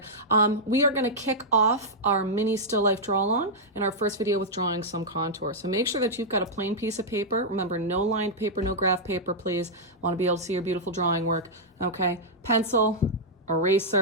We are gonna kick off our mini still life draw along in our first video with drawing some contour. So make sure that you've got a plain piece of paper. Remember, no lined paper, no graph paper, please. Want to be able to see your beautiful drawing work, okay? Pencil,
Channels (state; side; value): normal; both; correlation -0.07